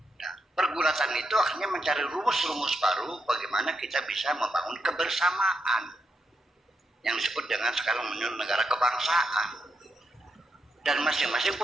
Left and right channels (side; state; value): both; normal; correlation 0.82